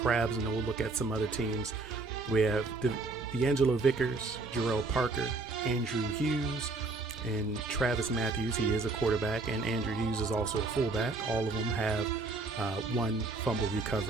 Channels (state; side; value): quieter; left; 3.5 dB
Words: and then we'll look at some other teams. We have D'Angelo Vickers, Jarrell Parker, Andrew Hughes, and Travis Matthews. He is a quarterback, and Andrew Hughes is also a fullback. All of them have 1 fumble